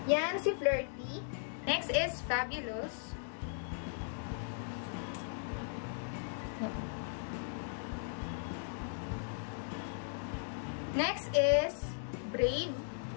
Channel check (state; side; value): silent; right; digital silence